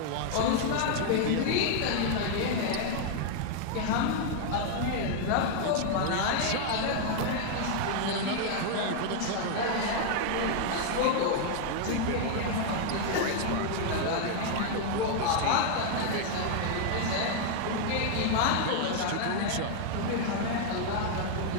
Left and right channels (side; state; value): both; different; correlation 0.00